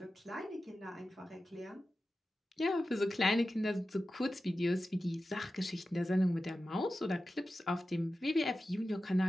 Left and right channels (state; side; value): normal; both; correlation 0.93